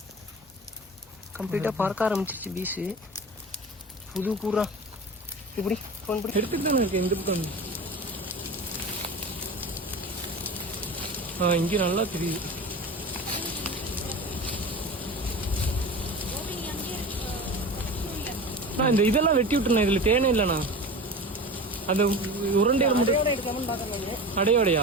கம்ப்ளீட்டாக பறக்க ஆரம்பிச்சிச்சு பீஸு. புது கூறா இப்படி ஃபோன் பண்ணி எடுத்துட்டு தானே இருக்கு. எந்த பக்கம் இங்கே நல்லா தெரியுது. நான் இந்த இதெல்லாம் வெட்டி விட்டுருண்ணா. இதில் தேனே இல்லைண்ணா. அந்த உருண்டையில் மட்டும்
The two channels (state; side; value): normal; both; correlation 0.32